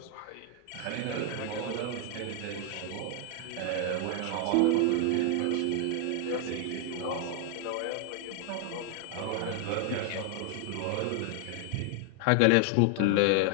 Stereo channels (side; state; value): both; different; correlation 0.00